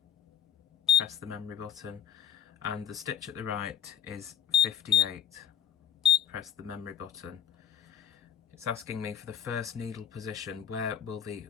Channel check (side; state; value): right; quieter; 9.5 dB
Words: Press the memory button. And the stitch at the right is 58. Press the memory button. It's asking me for the first needle position, where will the